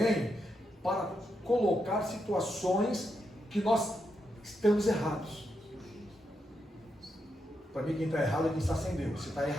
para colocar situações que nós estamos errados. Para mim, quem está errado é quem está sem Deus. Você está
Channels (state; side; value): normal; both; correlation 0.83